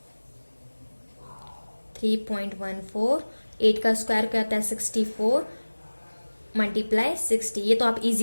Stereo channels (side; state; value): both; inverted; correlation -1.00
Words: 3.14। 8 का स्क्वायर क्या होता है 64 मल्टीप्लाई 60, ये तो आप